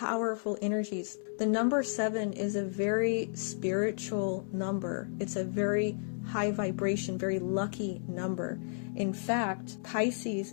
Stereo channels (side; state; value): right; silent; 56 dB below the other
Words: energies. The number 7 is a very spiritual number. It's a very high vibration, very lucky number. In fact,